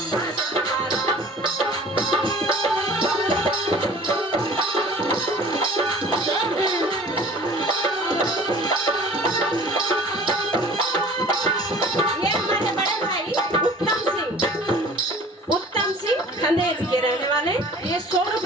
हमारा। ये हमारे बड़े भाई उत्तम सिंह खंडेर के रहने वाले, ये 100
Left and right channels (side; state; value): both; normal; correlation 0.46